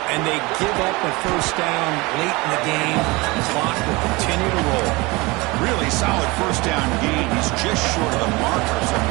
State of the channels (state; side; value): quieter; left; 24.1 dB